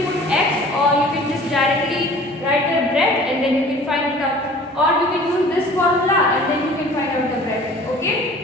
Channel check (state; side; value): normal; both; correlation 0.47